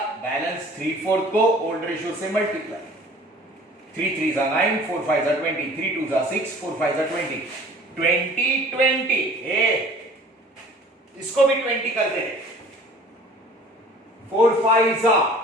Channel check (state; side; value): normal; both; correlation 0.48